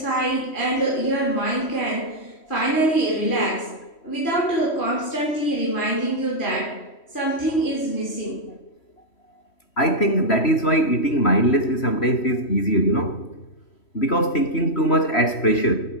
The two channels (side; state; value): right; late; 3.1 ms